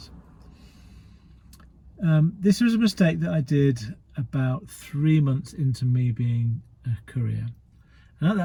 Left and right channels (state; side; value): identical; both; correlation 1.00